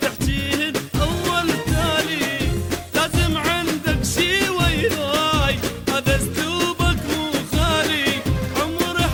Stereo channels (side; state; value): both; identical; correlation 1.00